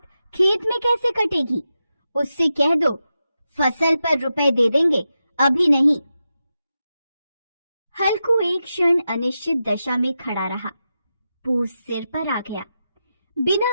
खेत में कैसे कटेगी? उससे कह दो फसल पर रुपए दे देंगे, अभी नहीं। हल्कू एक क्षण अनिश्चित दशा में खड़ा रहा। पूस सिर पर आ गया। बिना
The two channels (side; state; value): both; inverted; correlation -0.89